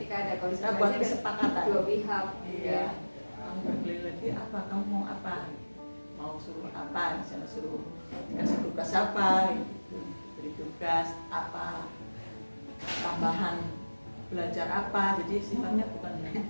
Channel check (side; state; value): both; inverted; correlation -1.00